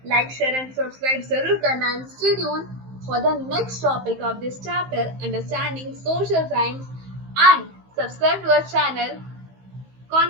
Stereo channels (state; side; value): late; left; 15 ms